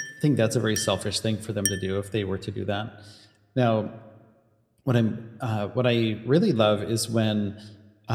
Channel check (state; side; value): identical; both; correlation 1.00